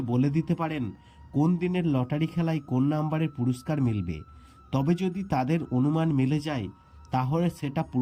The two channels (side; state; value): both; identical; correlation 1.00